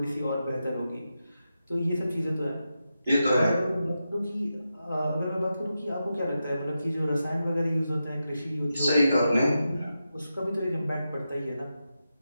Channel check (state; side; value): inverted; both; correlation -0.89